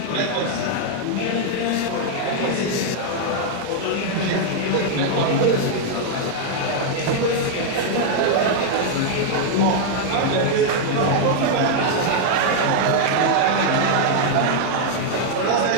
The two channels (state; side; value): different; both; correlation 0.00